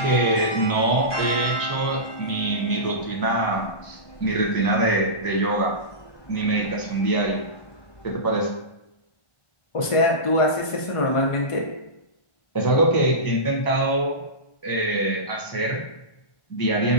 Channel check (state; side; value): late; right; 1.5 ms